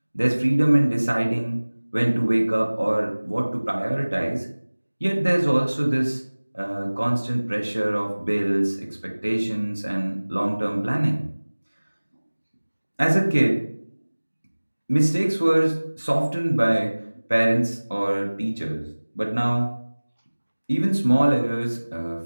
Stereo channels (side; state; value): both; inverted; correlation -1.00